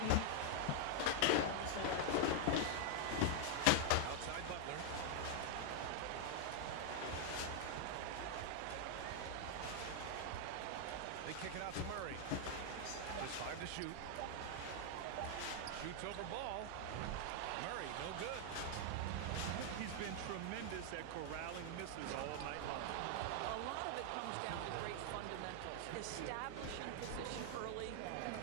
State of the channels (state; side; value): different; both; correlation 0.00